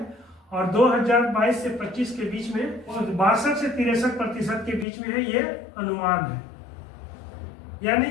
और 2022 से 25 के बीच में 62 से 63% के बीच में है। ये अनुमान है, यानी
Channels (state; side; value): drops out; right; at 4.9 s